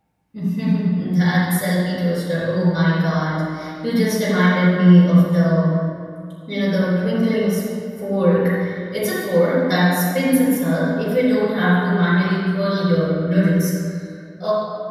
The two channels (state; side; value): identical; both; correlation 1.00